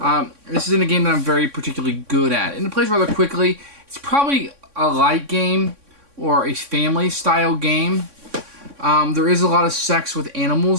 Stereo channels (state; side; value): late; left; 3.6 ms